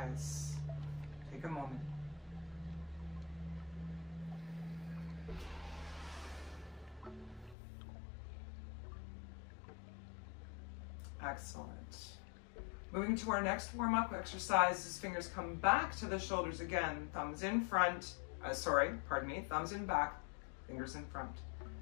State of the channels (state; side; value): drops out; right; at 7.6 s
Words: Take a moment. Excellent. Moving to our next warm-up exercise, as fingers come back to the shoulders again. Thumbs in front, thumbs in back, fingers in front.